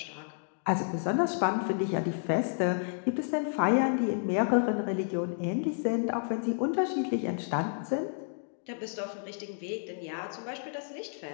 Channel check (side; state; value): right; silent; digital silence